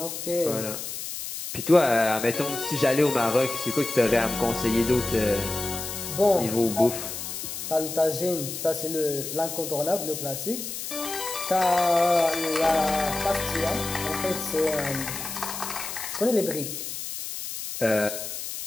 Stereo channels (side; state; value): left; noise; hiss, 7 dB below the sound